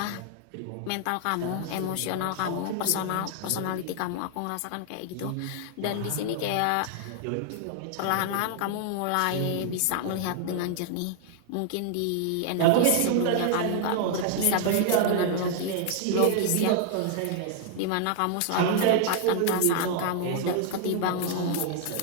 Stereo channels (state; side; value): different; both; correlation 0.00